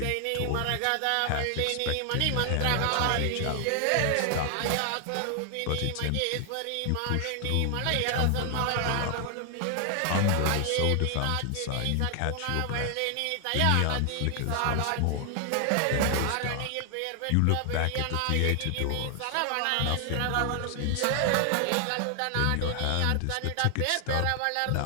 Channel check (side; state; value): both; different; correlation 0.00